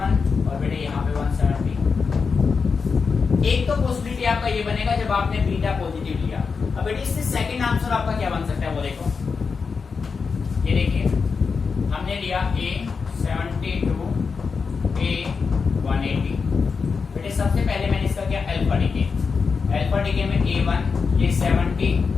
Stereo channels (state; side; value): quieter; right; 5.2 dB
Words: और बेटे यहाँ पे 170। एक तो पॉसिबिलिटी आपका ये बनेगा जब आपने बीटा पॉजिटिव लिया। अब बेटे इससे सेकंड आंसर आपका क्या बन सकता है वो देखो, ये देखिए हमने लिया A72 A180। बेटे सबसे पहले मैंने इसका किया अल्फा डिके, अल्फा डिके में A1 ये 70,